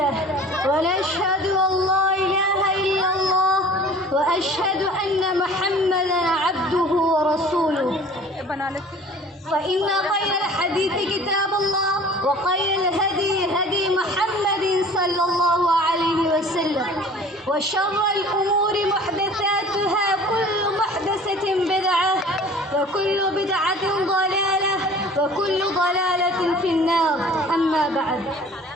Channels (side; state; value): both; normal; correlation 0.46